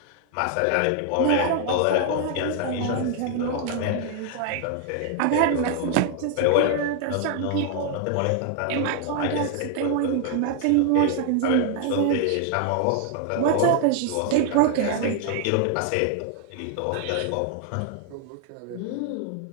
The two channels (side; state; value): both; different; correlation 0.00